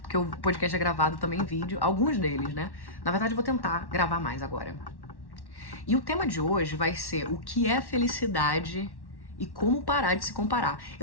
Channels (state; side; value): late; right; 1.1 ms